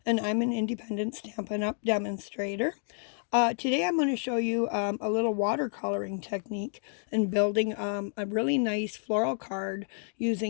and I'm an independent Stampin' Up! Demonstrator. Today I'm going to show you a little watercoloring technique and building a really nice floral card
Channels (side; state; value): right; silent; 58 dB below the other